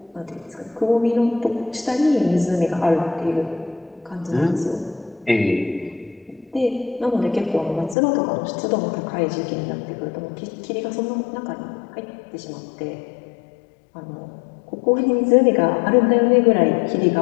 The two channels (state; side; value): drops out; right; at 8.0 s